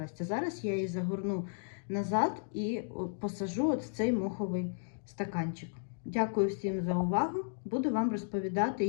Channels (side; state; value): right; silent; digital silence